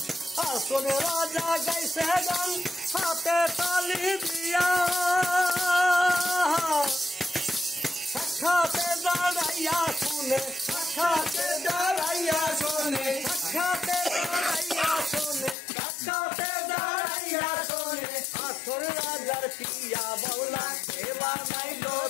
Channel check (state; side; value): drops out; right; at 15.6 s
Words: হাসুর রাজা গাইছে গান হাতে তালি দিয়া সাক্ষাতে দাঁড়াইয়া শুনে সাক্ষাতে দাঁড়াইয়া শুনে সাক্ষাতে দাঁড়াইয়া শুনে সাক্ষাতে দাঁড়াইয়া শুনে হাসুর রাজার পিয়া বাউলা কে বানাইলো